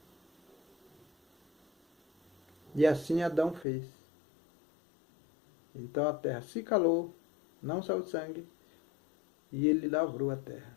E assim Adão fez. Então a terra se calou, não saiu sangue, e ele lavrou a terra.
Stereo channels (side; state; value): right; drops out; at 3.7 s